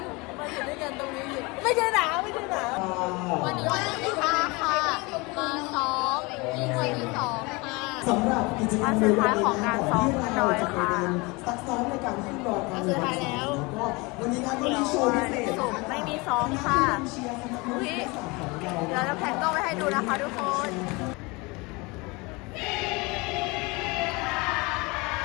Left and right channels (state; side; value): quieter; right; 25.9 dB